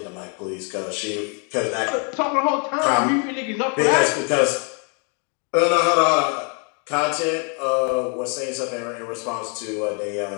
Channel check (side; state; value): right; quieter; 37.3 dB